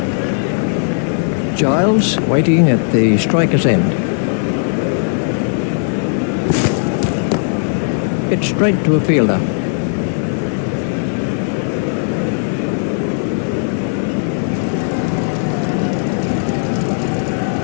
Giles waiting at the striker's end. It's straight to a fielder.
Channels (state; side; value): silent; right; 67 dB below the other